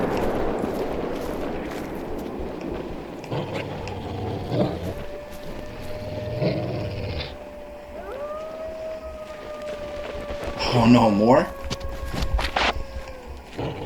Oh, no more.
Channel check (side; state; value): both; identical; correlation 1.00